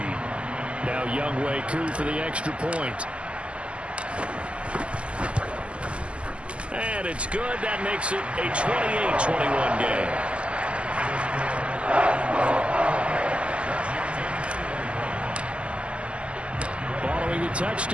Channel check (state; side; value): late; left; 0.055 ms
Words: Now Younghoe Koo for the extra point. And it's good. That makes it a 28-21 game. Following the